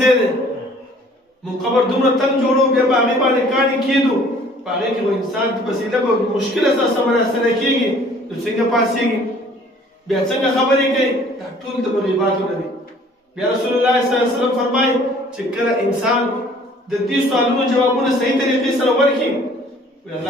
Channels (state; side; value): normal; both; correlation 0.54